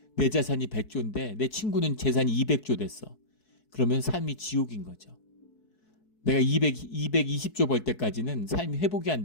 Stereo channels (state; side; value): late; right; 4.7 ms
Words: 내 자산이 100조인데 내 친구는 재산이 200조 됐어. 그러면 삶이 지옥인 거죠. 내가 220조 벌 때까지는 삶이 회복이 안